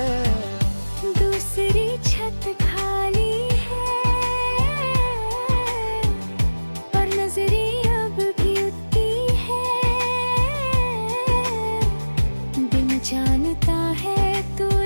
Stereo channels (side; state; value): both; inverted; correlation -1.00